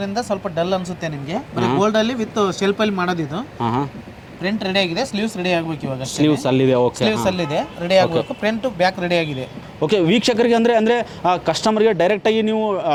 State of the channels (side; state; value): both; identical; correlation 1.00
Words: ಸ್ವಲ್ಪ ಡಲ್ ಅನ್ಸುತ್ತೆ ನಿಮಗೆ. ಗೋಲ್ಡ್ ಅಲ್ಲಿ ವಿತ್ ಶೆಲ್ಫ್ ಅಲ್ಲಿ ಮಾಡೋದಿದು. ಪ್ರಿಂಟ್ ರೆಡಿ ಆಗಿದೆ. ಸ್ಲೀವ್ಸ್ ರೆಡಿ ಆಗಬೇಕು ಇವಾಗ. ಸ್ಲೀವ್ಸ್ ಅಲ್ಲಿದೆ. ಓಕೆ, ಸ್ಲೀವ್ಸ್ ಅಲ್ಲಿದೆ, ರೆಡಿ ಆಗಬೇಕು. ಫ್ರಂಟ್ ಬ್ಯಾಕ್ ರೆಡಿ ಆಗಿದೆ. ಓಕೆ ವೀಕ್ಷಕರಿಗೆ ಅಂದರೆ ಕಸ್ಟಮರ್ಗೆ ಡೈರೆಕ್ಟಾಗಿ ನೀವು